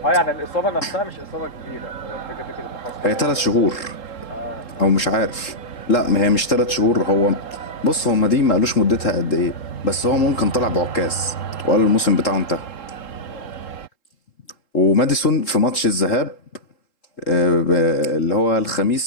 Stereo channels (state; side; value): late; right; 3.7 ms